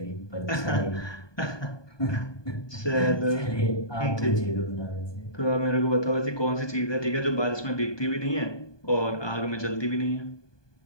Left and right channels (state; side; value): late; right; 1.2 ms